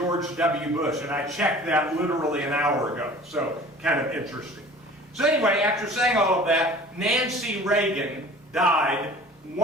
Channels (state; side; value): normal; both; correlation 0.45